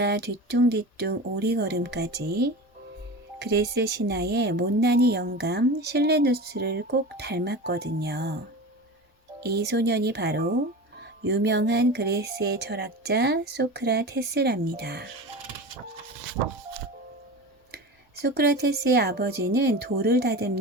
뒤뚱뒤뚱 오리걸음까지. 그레스 신화의 못난이 영감 실레누스를 꼭 닮았거든요. 이 소년이 바로 유명한 그레스의 철학자 소크라테스랍니다. 소크라테스의 아버지는 돌을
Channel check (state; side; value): normal; both; correlation 0.30